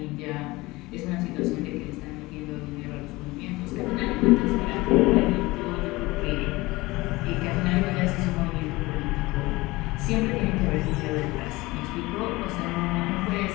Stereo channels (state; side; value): quieter; right; 21.1 dB